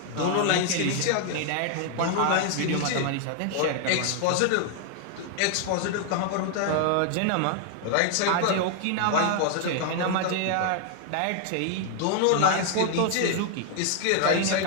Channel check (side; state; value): both; different; correlation 0.00